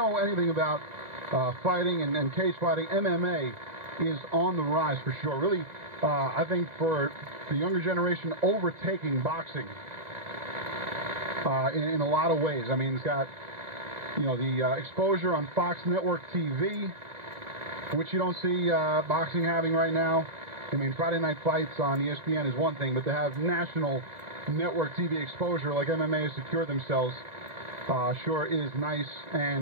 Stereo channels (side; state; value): left; late; 1.9 ms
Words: anything about fighting and cage fighting, MMA is on the rise for sure. Really, I think for the younger generation, overtaking boxing in a lot of ways. I mean, it's got, the exposure on Fox Network TV, which you don't see boxing having right now. I mean, Friday Night Fights on ESPN is one thing, but to have national network TV exposure like MMA has secured themselves sure is nice.